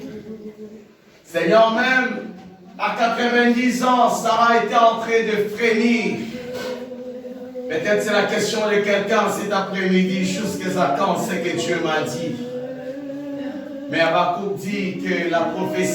Seigneur, même à 90 ans, Sarah était en train de frémir. Peut-être c'est la question de quelqu'un cet après-midi, jusqu'à quand c'est que Dieu m'a dit. Mais Habakkuk dit que la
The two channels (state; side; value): identical; both; correlation 1.00